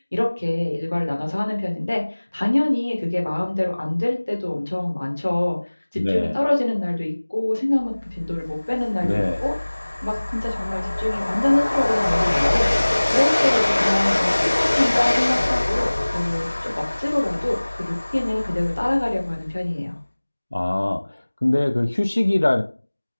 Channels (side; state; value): both; inverted; correlation -1.00